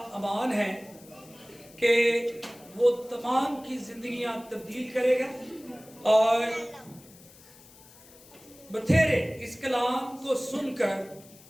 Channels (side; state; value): left; noise; hiss, 23 dB below the sound